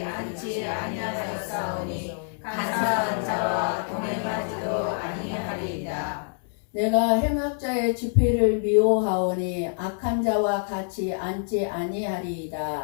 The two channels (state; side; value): silent; right; 61 dB below the other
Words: 앉지 아니하였사오니 간사한 자와 동행하지도 아니하리이다. 내가 행악자의 집회를 미워하오니 악한 자와 같이 앉지